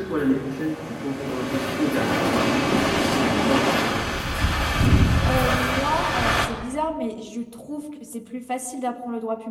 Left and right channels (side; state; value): both; identical; correlation 1.00